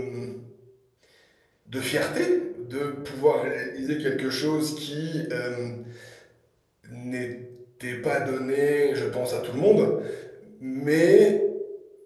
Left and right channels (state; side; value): identical; both; correlation 1.00